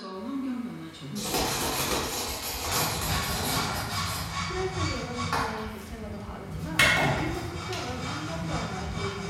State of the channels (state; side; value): identical; both; correlation 1.00